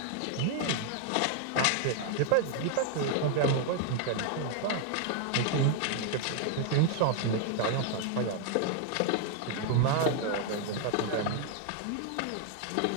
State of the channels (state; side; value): different; both; correlation 0.00